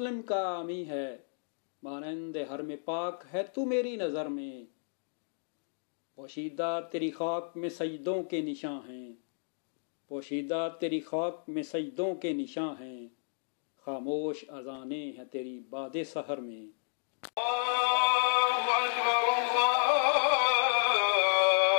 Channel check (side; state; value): right; silent; digital silence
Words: का आमी है, मानंद हर में पाक है तू मेरी नज़र में। पोशीदा तेरी खाक में सजदों के निशां हैं, पोशीदा तेरी खाक में सजदों के निशां हैं, खामोश अज़ाने हैं तेरी बादे सहर में।